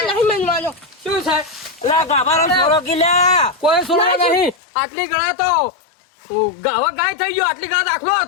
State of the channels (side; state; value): right; drops out; at 4.5 s